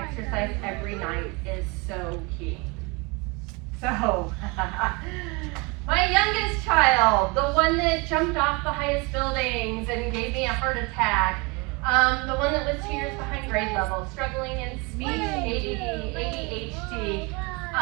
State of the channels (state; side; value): quieter; left; 28.4 dB